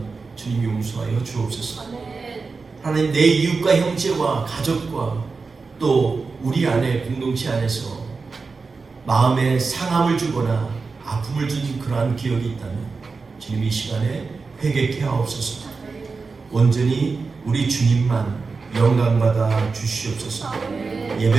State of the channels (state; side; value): quieter; left; 4.4 dB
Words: 주님 용서하여 주옵소서. 하나님, 내 이웃과 형제와 가족과 또 우리 안에 공동체 안에서 마음에 상함을 주거나 아픔을 준 그러한 기억이 있다면 주님 이 시간에 회개케 하옵소서. 온전히 우리 주님만 영광받아 주시옵소서.